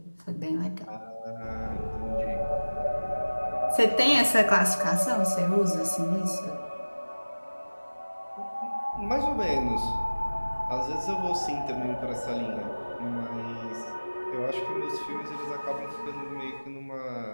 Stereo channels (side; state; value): both; inverted; correlation -1.00